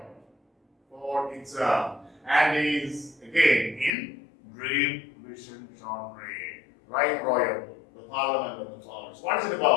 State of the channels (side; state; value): right; drops out; at 4.0 s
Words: for exam, and is again in dream vision genre. Rhyme royal, the Parliament of the Fowls. What is it